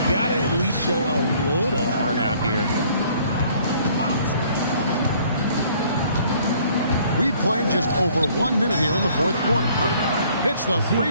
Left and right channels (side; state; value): both; inverted; correlation -0.59